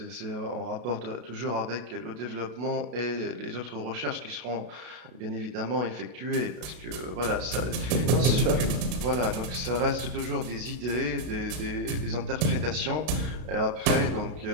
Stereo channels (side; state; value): left; late; 32 ms